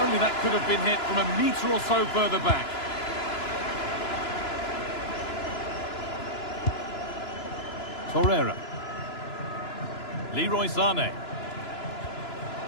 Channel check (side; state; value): right; late; 2.9 ms